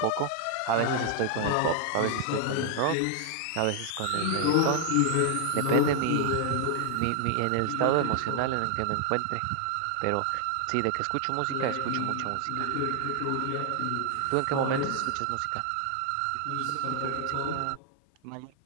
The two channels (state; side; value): different; both; correlation 0.00